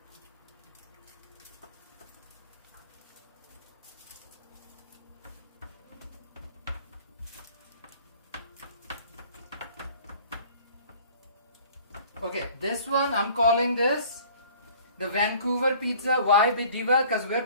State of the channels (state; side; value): inverted; both; correlation -0.50